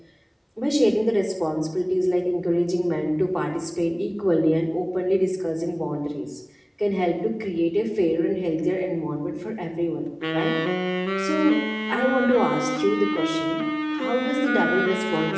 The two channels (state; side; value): identical; both; correlation 1.00